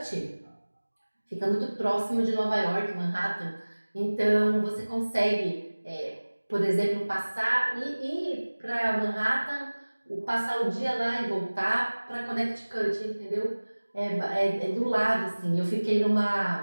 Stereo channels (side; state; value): both; inverted; correlation -1.00